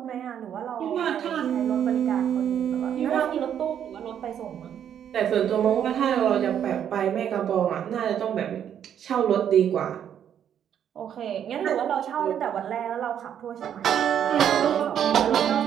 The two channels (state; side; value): quieter; left; 9.3 dB